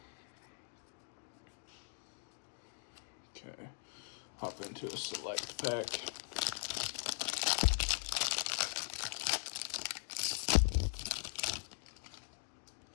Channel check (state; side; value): silent; right; digital silence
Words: Okay, hop into a select pack.